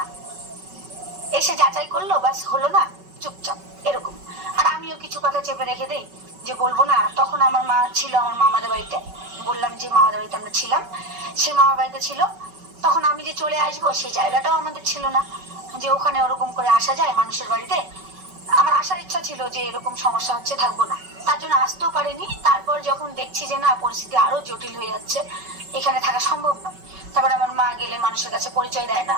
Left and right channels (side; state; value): left; late; 5.3 ms